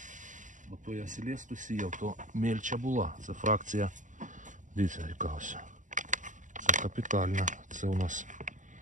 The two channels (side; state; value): left; late; 0.37 ms